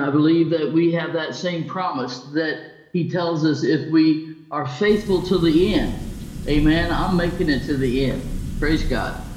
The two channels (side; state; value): both; identical; correlation 1.00